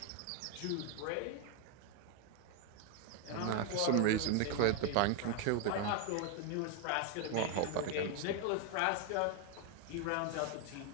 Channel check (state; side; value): different; both; correlation 0.01